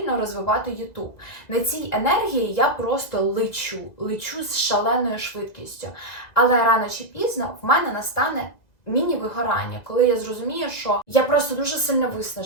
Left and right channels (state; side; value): late; right; 2.0 ms